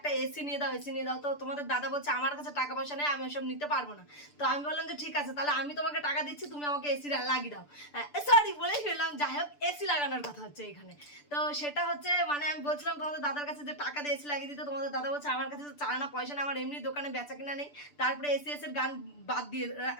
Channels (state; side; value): late; right; 6.8 ms